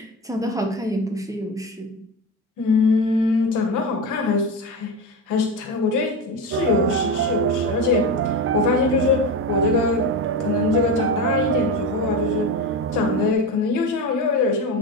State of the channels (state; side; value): normal; both; correlation 0.20